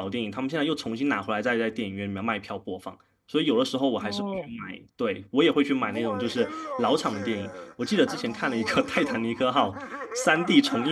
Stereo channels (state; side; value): identical; both; correlation 1.00